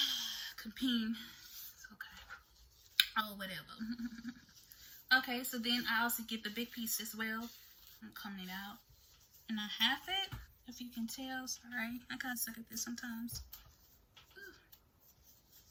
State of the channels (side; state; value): both; identical; correlation 1.00